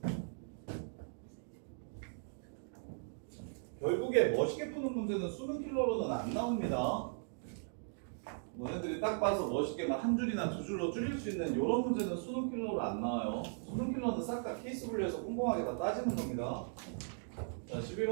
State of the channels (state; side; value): silent; left; digital silence